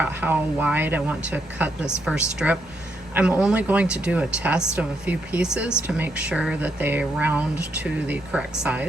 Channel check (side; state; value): both; normal; correlation 0.78